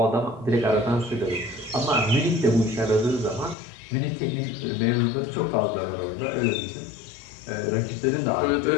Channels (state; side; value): drops out; right; at 3.6 s